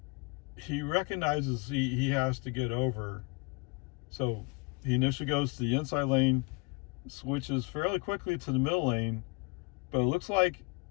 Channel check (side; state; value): right; quieter; 30.8 dB